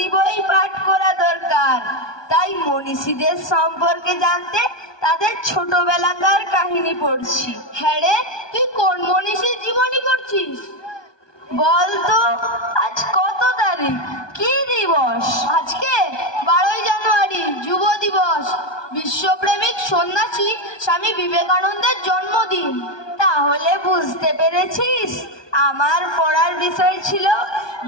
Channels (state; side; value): late; right; 1.2 ms